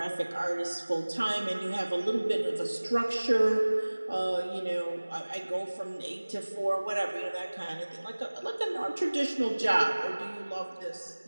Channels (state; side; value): inverted; both; correlation -1.00